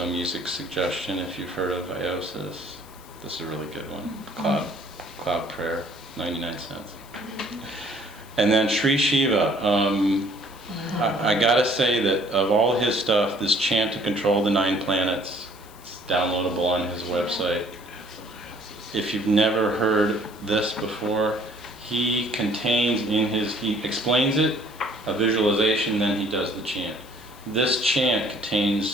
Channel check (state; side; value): noise; left; hiss, 24 dB below the sound